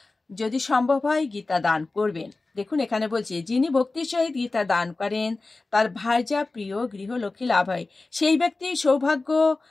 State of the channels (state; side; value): quieter; right; 3.4 dB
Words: যদি সম্ভব হয় গীতা দান করবেন। দেখুন এখানে বলছে যিনি ভক্তির সহিত গীতা দান করেন তার ভার্যা প্রিয় গৃহলক্ষ্মী লাভ হয়। সেই ব্যক্তি সৌভাগ্য,